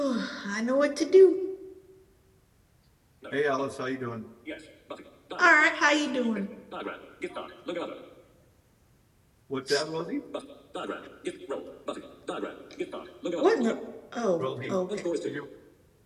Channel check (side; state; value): both; identical; correlation 1.00